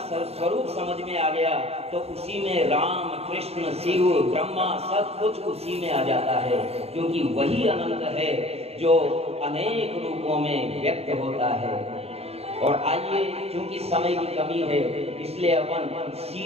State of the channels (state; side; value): late; left; 0.29 ms